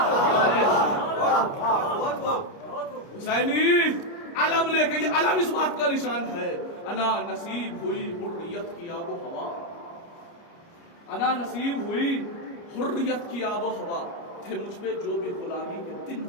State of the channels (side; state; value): right; late; 29 ms